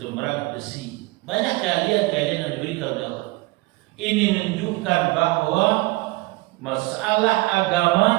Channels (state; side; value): quieter; left; 22.1 dB